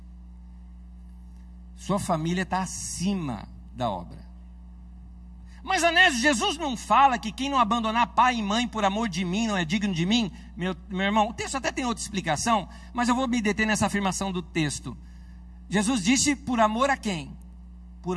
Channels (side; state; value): both; identical; correlation 1.00